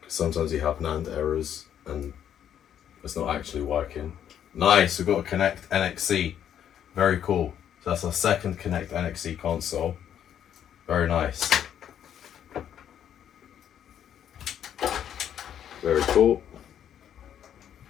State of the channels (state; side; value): quieter; right; 9.7 dB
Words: sometimes you have NAND errors and it's not actually working. Nice, we've got a Connect NXC. Very cool. So that's our second Connect NXC console. Very nice. Very cool.